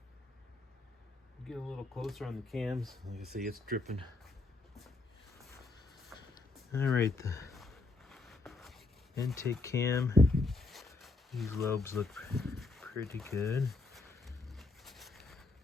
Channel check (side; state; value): right; quieter; 3.5 dB